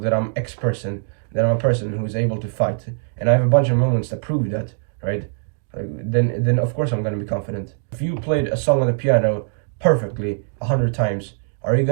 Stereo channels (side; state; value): left; silent; digital silence